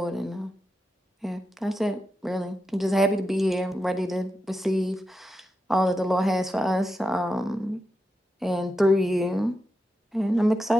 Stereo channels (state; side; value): normal; both; correlation 0.88